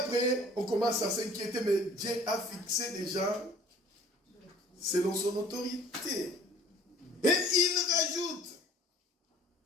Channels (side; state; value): both; normal; correlation 0.51